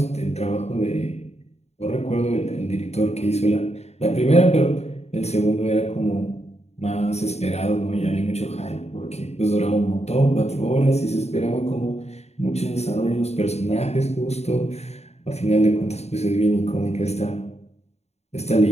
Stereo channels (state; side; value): late; right; 0.31 ms